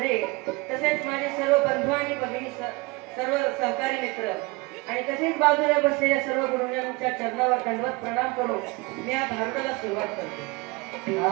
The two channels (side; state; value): left; quieter; 24.9 dB